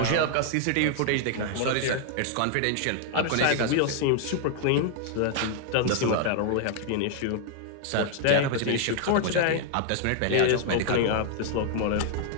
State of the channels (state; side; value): different; both; correlation 0.00